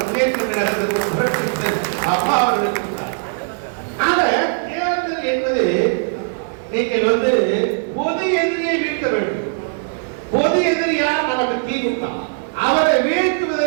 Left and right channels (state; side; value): silent; left; 64 dB below the other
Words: முன்னேற்ற கழகத்திற்கு அப்பா அவர்களுக்கு. தேர்தல் என்பது நீங்கள் பொது எதிரியை வீழ்த்த வேண்டும். பொது எதிரி யார்? நமக்கு திமுக. அவரை